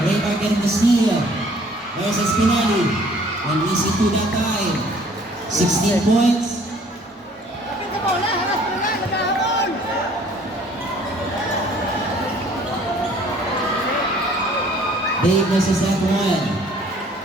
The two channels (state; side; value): normal; both; correlation 0.56